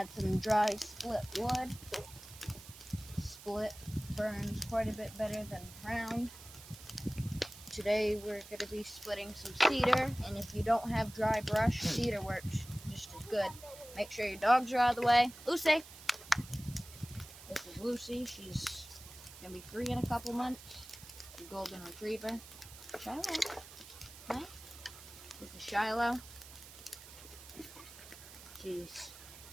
some dry split wood. Split burns quite a bit better than round. Today we're going to be splitting some cedar, and if you don't have dry brush, cedar works just as good. Make sure your dogs are out of the way. Lucy! This is Lucy. She's going to be 3 in a couple months. A golden retriever. Shiloh. Hi. This is Shiloh. She's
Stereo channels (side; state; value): right; noise; hiss, 16 dB below the sound